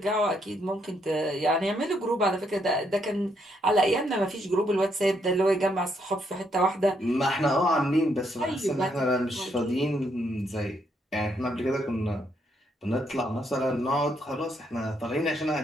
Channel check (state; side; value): normal; both; correlation 0.74